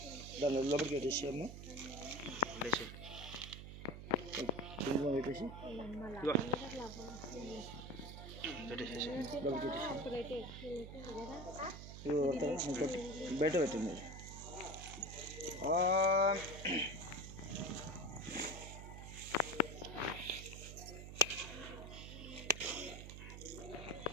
దాని లోపలికి పెట్టేసాము. పెట్టేసి బయట పెట్టింది.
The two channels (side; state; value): right; noise; hum, 10 dB below the sound